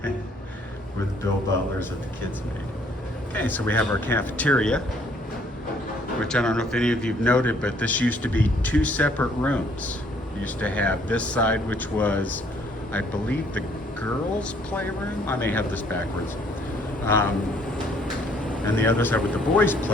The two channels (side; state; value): both; normal; correlation 0.63